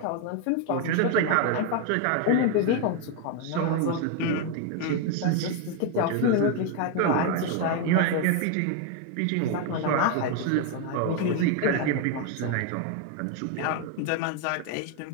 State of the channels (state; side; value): different; both; correlation 0.01